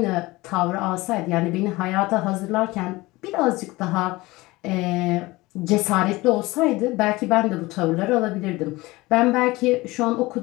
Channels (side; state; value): right; quieter; 20.7 dB